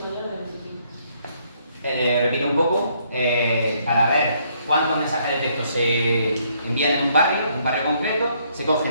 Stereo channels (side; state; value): both; inverted; correlation -0.69